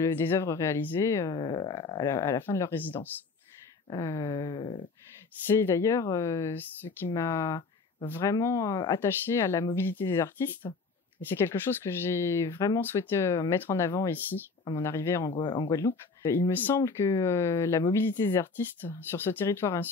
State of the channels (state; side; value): quieter; right; 4.4 dB